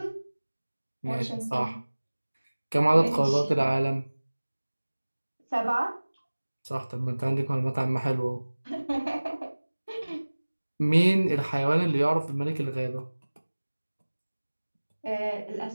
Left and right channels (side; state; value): both; inverted; correlation -1.00